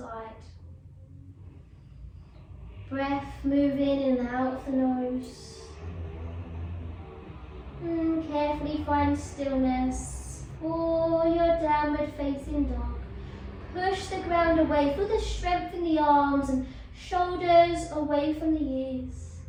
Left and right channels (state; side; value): identical; both; correlation 1.00